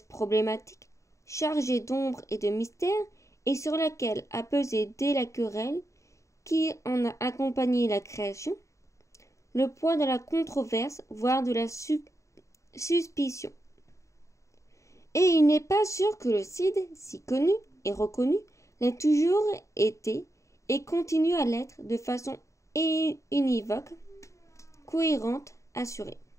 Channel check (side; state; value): right; late; 0.15 ms